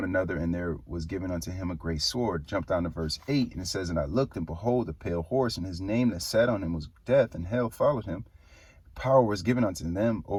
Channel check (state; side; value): identical; both; correlation 1.00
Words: another, and there was given unto him a great sword. Jump down to verse 8, and it says, and I looked, and behold, a pale horse, and his name that sat on him was Death, and hell followed him. Power was given unto them